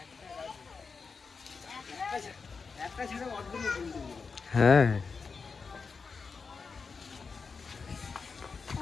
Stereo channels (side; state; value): right; quieter; 5.0 dB